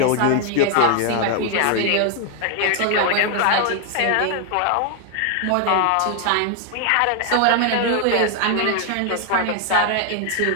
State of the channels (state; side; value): different; both; correlation 0.00